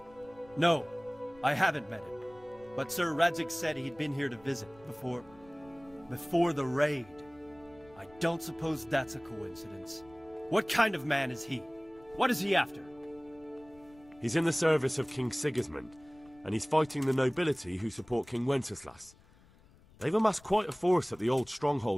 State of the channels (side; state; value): left; noise; rumble, 26 dB below the sound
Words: No, I haven't met him. But Sir Radzig said he'd been here to visit before the raid. I don't suppose that's a coincidence. What kind of man is he? What is he after? He's in the service of King Sigismund, and he's fighting the nobility who support King Wenceslas. They've amassed quite a force at the old